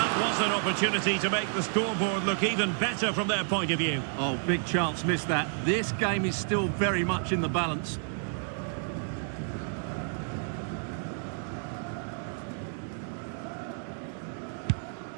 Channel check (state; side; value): silent; left; 57 dB below the other